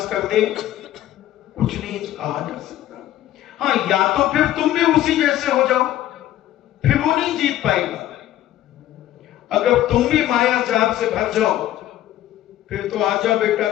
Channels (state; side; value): quieter; right; 13.2 dB